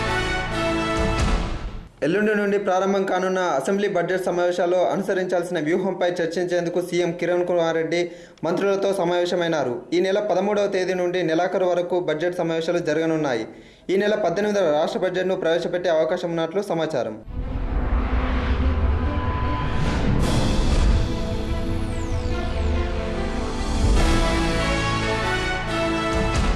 ఎల్లుండి నుండి ప్రారంభం కానున్న అసెంబ్లీ బడ్జెట్ సమావేశాల్లో అనుసరించాల్సిన వ్యూహంపై చర్చించేందుకు సీఎం కిరణ్ కుమార్ రెడ్డి మంత్రులతో సమావేశమైనారు. ఈ నెల 13వ తేదీ నుండి నెలాఖరు వరకు బడ్జెట్ సమావేశాలు జరగనున్నాయి. ఈ నెల 18వ రాష్ట్ర బడ్జెట్ను ప్రవేశపెట్టే అవకాశం ఉన్నట్లు సమాచారం.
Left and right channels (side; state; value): both; identical; correlation 1.00